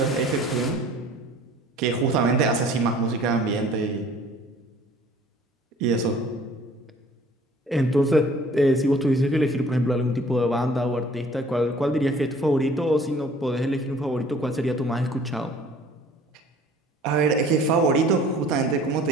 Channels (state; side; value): normal; both; correlation 0.52